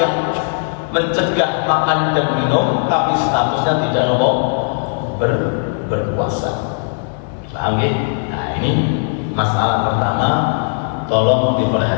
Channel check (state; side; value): silent; right; digital silence